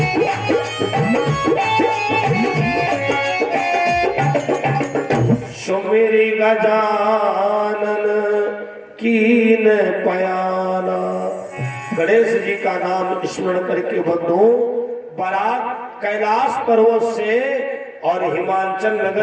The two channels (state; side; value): identical; both; correlation 1.00